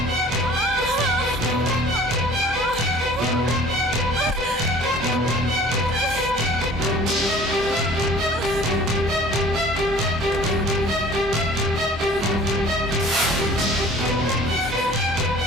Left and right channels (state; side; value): normal; both; correlation 0.48